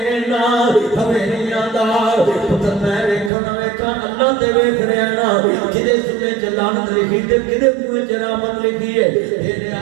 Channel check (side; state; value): left; drops out; at 3.3 s